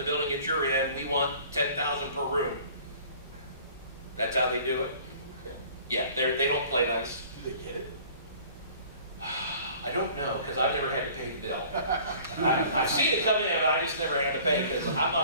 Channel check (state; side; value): inverted; both; correlation -0.50